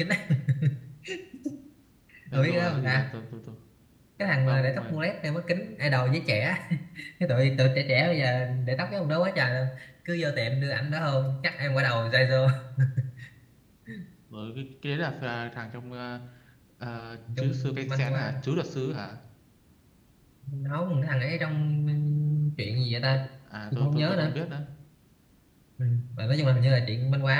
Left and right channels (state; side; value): identical; both; correlation 1.00